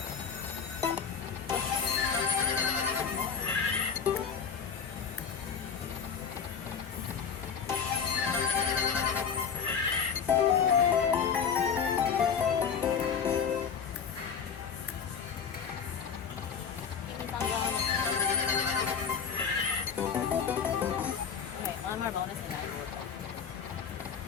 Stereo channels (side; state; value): right; quieter; 6.7 dB